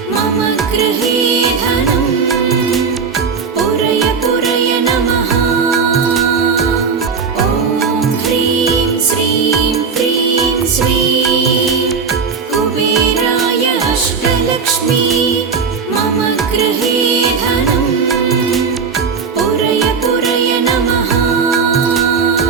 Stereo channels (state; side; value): quieter; left; 5.5 dB